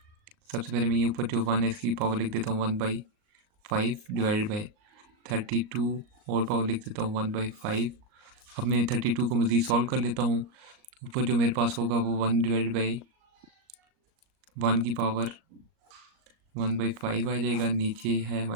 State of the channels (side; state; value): left; late; 38 ms